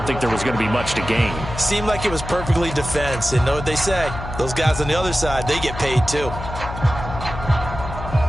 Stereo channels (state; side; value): noise; left; hum, 9 dB below the sound